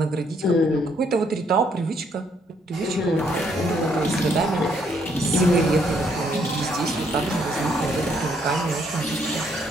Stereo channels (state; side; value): normal; both; correlation 0.70